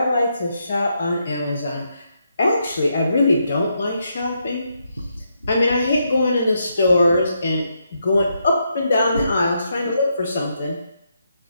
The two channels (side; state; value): both; inverted; correlation -0.80